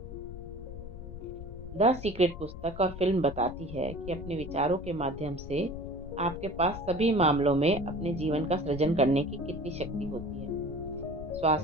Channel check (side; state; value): left; noise; rumble, 11 dB below the sound